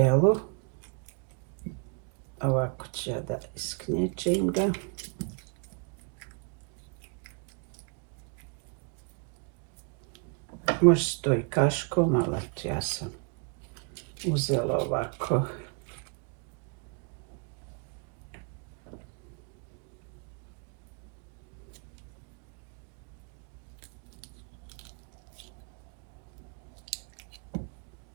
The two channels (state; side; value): quieter; left; 36.5 dB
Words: Ovako ću ja da isknječim ga. Može to i kaškom, ali ja sam uzela ovako.